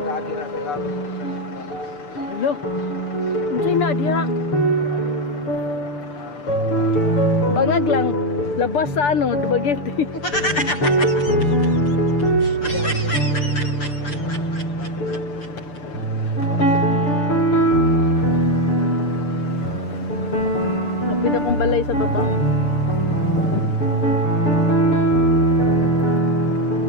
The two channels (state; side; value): late; right; 6.8 ms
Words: na sila. Hello? Unsay na diha? Bangag lang. Labas sa ano, Dumaguete. Kapit akong balay sa baba.